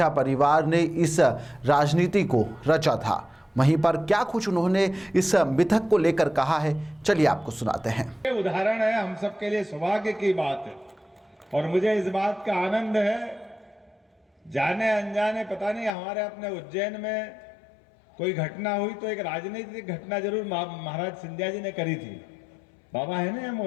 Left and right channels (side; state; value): right; drops out; at 15.9 s